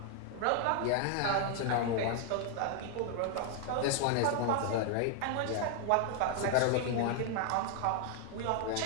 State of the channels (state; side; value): different; both; correlation 0.00